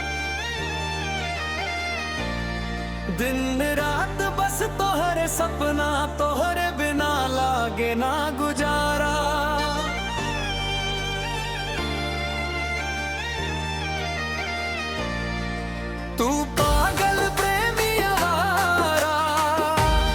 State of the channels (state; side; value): identical; both; correlation 1.00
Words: दिन रात बस तोहरे सपना, तोहरे बिना लागे ना गुजारा। तू पागल प्रेमी आवारा,